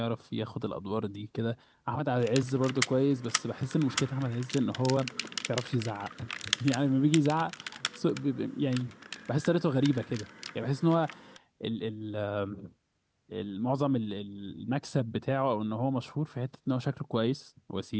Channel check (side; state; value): both; identical; correlation 1.00